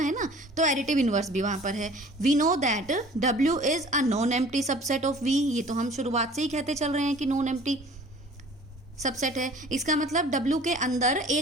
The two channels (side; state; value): both; normal; correlation 0.48